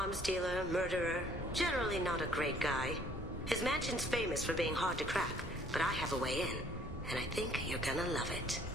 dealer, murderer, generally not a great guy. His mansion's famous for being hard to crack, but I have a way in, and I think you're gonna love it.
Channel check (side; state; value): both; normal; correlation 0.60